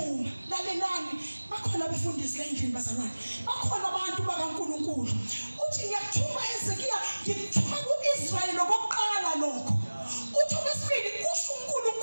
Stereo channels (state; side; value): inverted; both; correlation -1.00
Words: lalelani, bakhona abefundisi la endlini bazalwane, bakhona abantu bakaNkulunkulu. Uthi ngiyakuthuma Hezekiya, ngikuthuma kuIsrayeli lokuqala lokho. Uthi okwesibili kusho